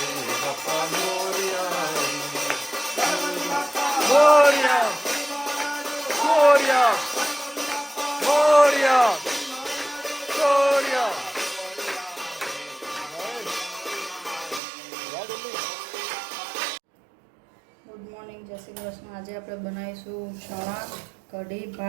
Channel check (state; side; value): drops out; left; at 14.6 s